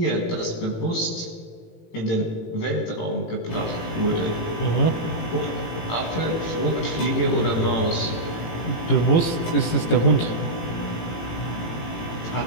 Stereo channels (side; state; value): right; late; 18 ms